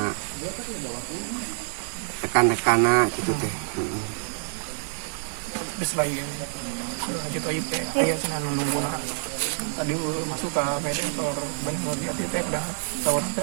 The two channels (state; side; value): silent; left; 60 dB below the other